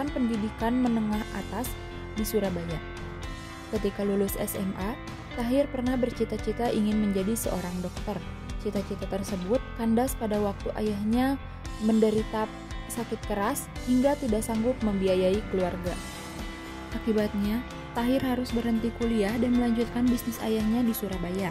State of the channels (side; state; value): both; identical; correlation 1.00